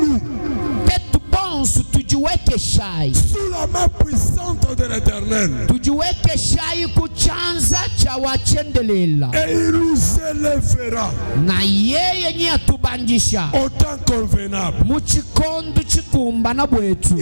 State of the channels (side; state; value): both; inverted; correlation -1.00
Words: tujiweke shai sous la main puissante de l'Éternel. Tujiweke shai kuchanza cha wachendelela. Et il nous élèvera. Na yeye nye atubandisha. Au temps convenable. Muchikondu chikumbana bwetu.